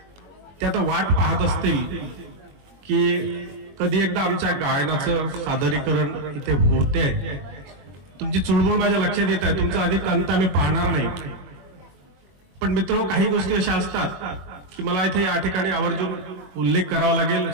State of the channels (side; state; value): left; late; 21 ms